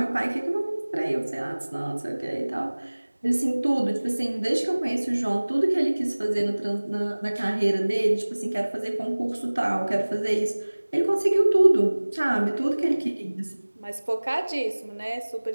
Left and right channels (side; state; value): both; inverted; correlation -1.00